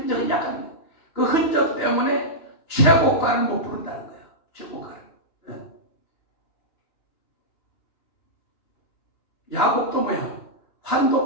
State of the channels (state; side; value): late; right; 2.9 ms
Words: 약간 그 흔적 때문에 최고가를 못 부른다는 거예요. 최고가를. 네. 야곱도 뭐야?